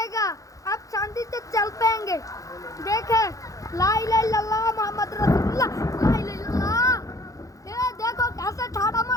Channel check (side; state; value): right; late; 0.16 ms